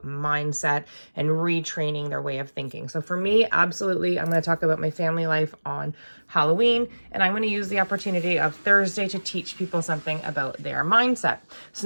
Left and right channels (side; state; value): both; inverted; correlation -1.00